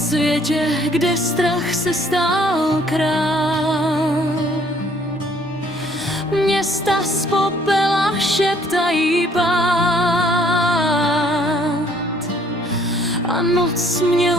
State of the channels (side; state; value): both; normal; correlation 0.62